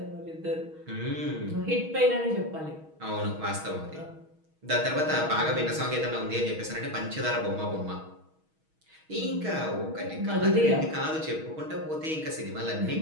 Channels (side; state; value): left; late; 6.3 ms